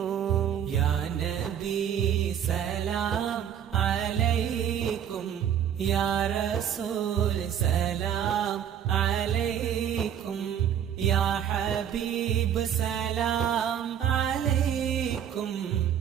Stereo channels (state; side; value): quieter; left; 9.3 dB